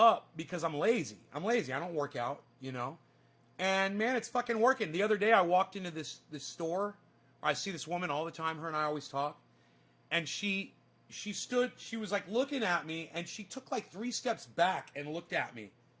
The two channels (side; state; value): both; identical; correlation 1.00